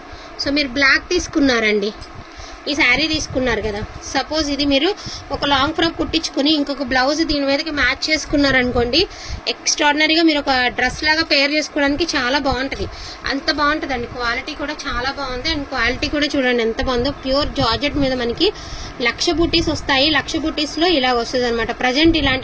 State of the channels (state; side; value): identical; both; correlation 1.00